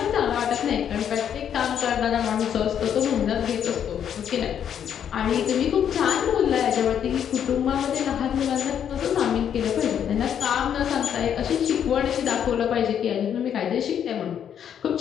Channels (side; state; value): right; quieter; 8.9 dB